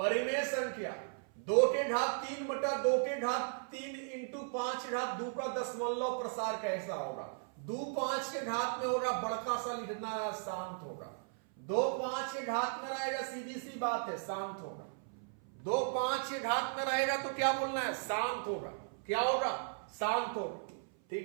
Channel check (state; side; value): silent; left; 54 dB below the other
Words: संख्या 2 के घात 3 बटा 2 के घात 3 इंटू 5 घात 2 का दशमलव प्रसार कैसा होगा? 2 5 के घात में होगा, बड़का सा लिखना है, शांत होगा। 2 5 के घात में रहेगा, सीधी सी बात है, शांत होगा। 2 5 के घात में रहेगा तो क्या बोलना है? शांत होगा। क्या होगा? शांत होगा,